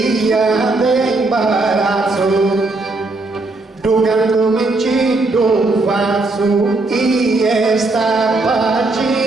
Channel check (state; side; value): quieter; left; 3.2 dB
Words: d'imbarazzo dogando che ci do faccio e sta